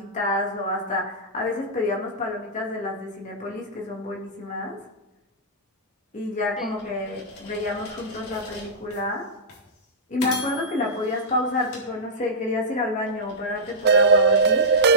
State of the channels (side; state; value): both; normal; correlation -0.15